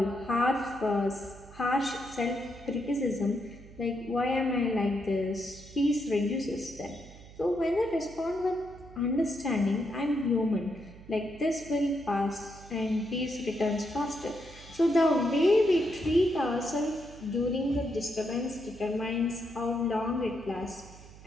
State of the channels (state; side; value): noise; right; hum, 19 dB below the sound